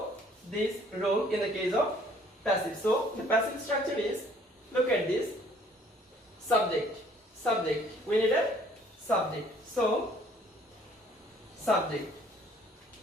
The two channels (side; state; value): both; normal; correlation 0.59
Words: this rule in the case of passive. So the passive structure is, look at this, subject, subject. We need a subject. So subject.